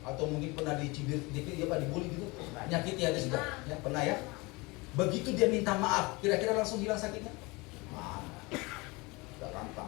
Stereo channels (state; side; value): quieter; right; 25.1 dB